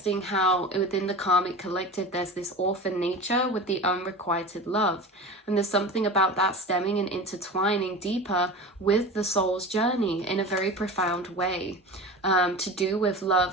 how within the karmic collective there's this orphan nature with the unrequited love, and there's something about that stemming and intertwining deeper with the soul's journey in a very profound way, to do with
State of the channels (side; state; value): both; normal; correlation 0.32